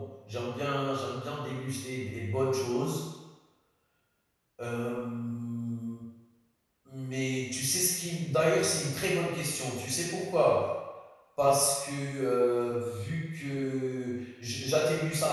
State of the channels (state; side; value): identical; both; correlation 1.00